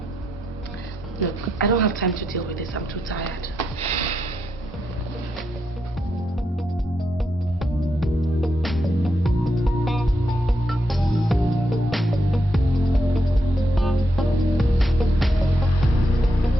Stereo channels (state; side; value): normal; both; correlation 0.81